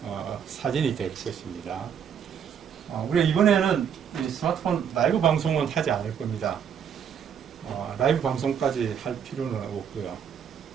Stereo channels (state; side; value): quieter; left; 8.0 dB